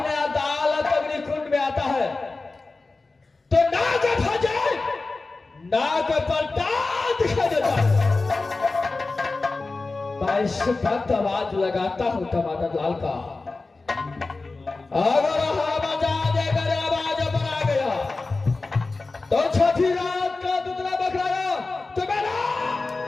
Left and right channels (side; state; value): right; quieter; 3.6 dB